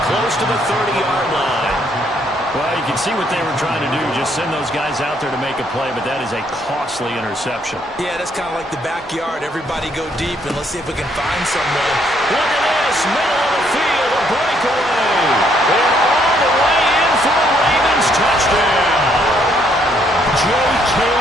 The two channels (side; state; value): both; normal; correlation 0.70